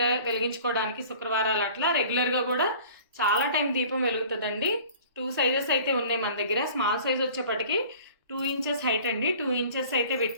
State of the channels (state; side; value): inverted; both; correlation -0.46